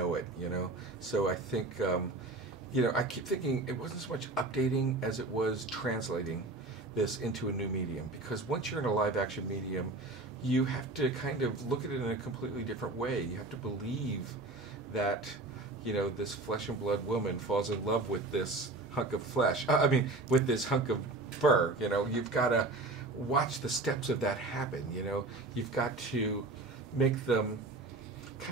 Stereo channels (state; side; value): quieter; left; 3.0 dB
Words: it, you know. So I think, I keep thinking it wasn't so much updating as it was translating this into a new medium. Because once you're in a live action medium, you have to kind of look at it in a completely different way. You have to believe that, this flesh and blood woman falls in love with this hunk of flesh. With this hunk of fur. You've got to watch the steps of that happen. You've got to make them